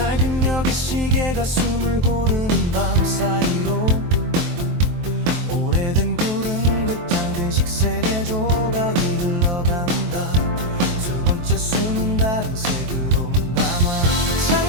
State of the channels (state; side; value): late; left; 23 ms